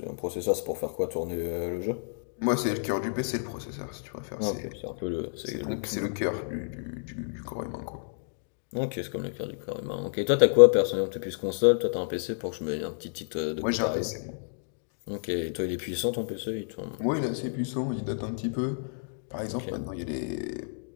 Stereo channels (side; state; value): right; silent; digital silence